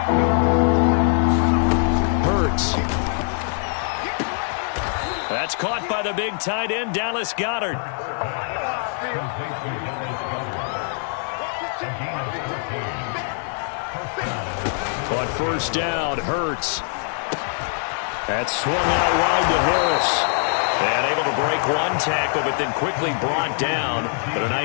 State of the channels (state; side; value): silent; right; 63 dB below the other